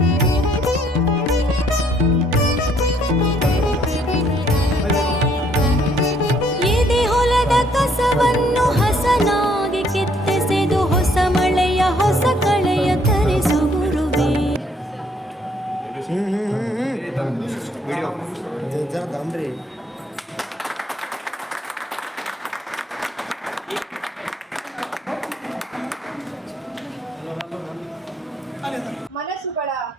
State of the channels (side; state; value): both; normal; correlation 0.66